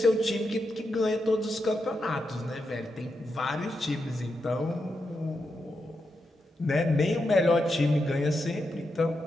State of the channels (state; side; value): normal; both; correlation 0.85